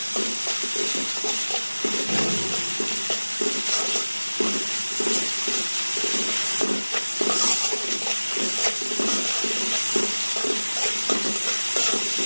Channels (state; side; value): inverted; both; correlation -1.00